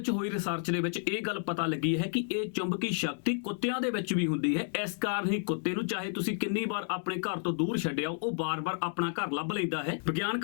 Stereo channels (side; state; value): right; silent; digital silence